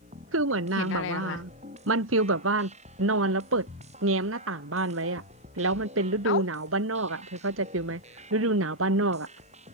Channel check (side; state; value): both; normal; correlation -0.03